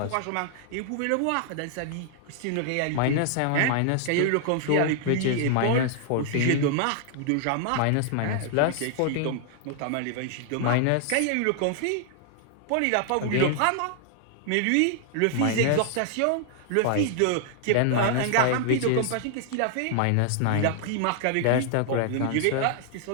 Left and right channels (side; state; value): both; different; correlation 0.00